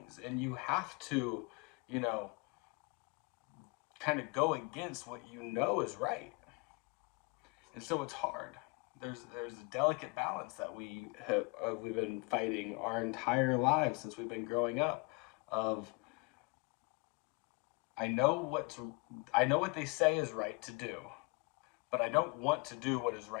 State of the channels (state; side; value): quieter; right; 29.8 dB